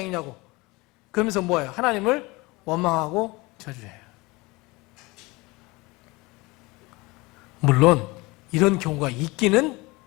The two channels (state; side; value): quieter; right; 23.5 dB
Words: 그러면서 뭐예요? 하나님을 원망하고 저주해요. 물론 이런 경우가 있기는